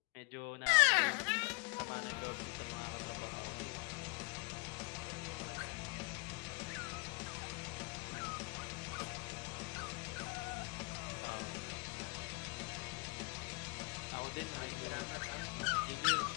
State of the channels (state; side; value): quieter; right; 29.4 dB